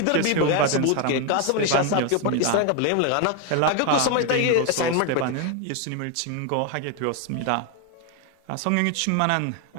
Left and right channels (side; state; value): both; different; correlation 0.02